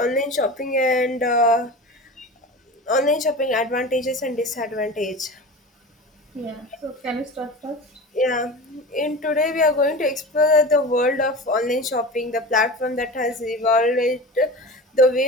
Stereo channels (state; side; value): normal; both; correlation 0.32